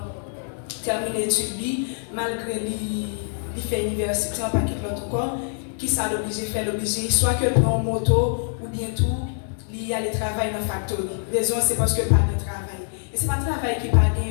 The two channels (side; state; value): right; silent; digital silence